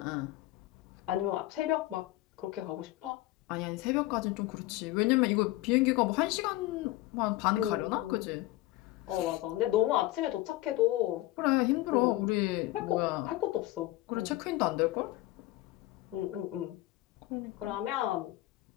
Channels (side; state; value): right; quieter; 17.4 dB